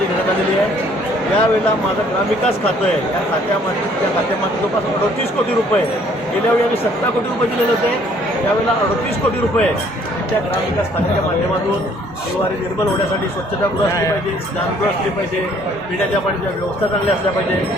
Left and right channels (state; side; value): normal; both; correlation 0.61